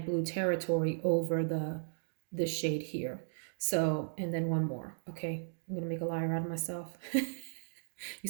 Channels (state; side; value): silent; left; digital silence